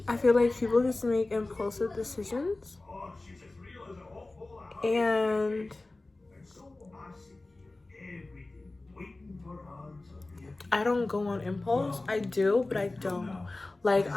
I feel like people just make impulsive decisions, and I don't go on impulse. I do, but I don't. Like,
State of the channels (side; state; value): right; quieter; 3.0 dB